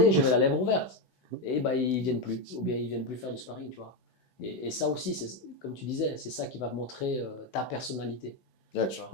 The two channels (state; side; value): late; right; 16 ms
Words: j'avais la lèvre ouverte. Et bah, ils viennent plus. Ou bien ils viennent plus faire du sparring, tu vois. Et ça aussi, comme tu disais, c'est ça qui va montrer ta personnalité. Yeah, tu ne